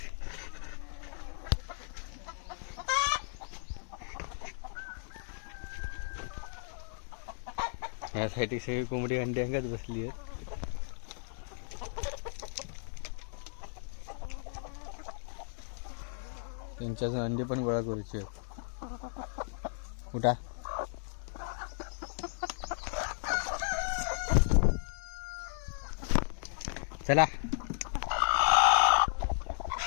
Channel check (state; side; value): silent; right; digital silence